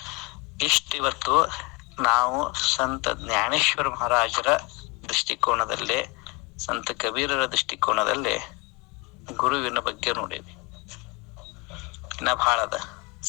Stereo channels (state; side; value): quieter; right; 28.2 dB